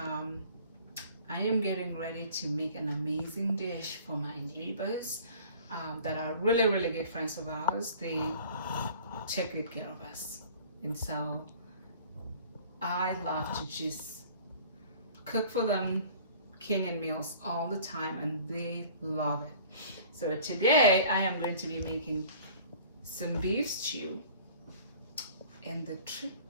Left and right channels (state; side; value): inverted; both; correlation -0.48